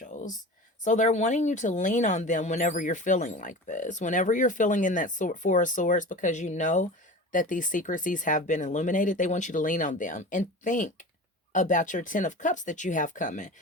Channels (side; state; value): both; normal; correlation 0.34